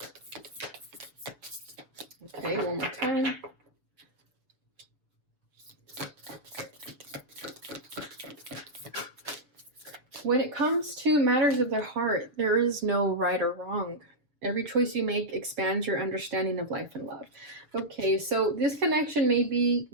Okay, one more time. When it comes to matters of the heart, there is no right or wrong. Every choice you make expands your understanding of life and love. Okay, so this connection may be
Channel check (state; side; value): late; left; 6.9 ms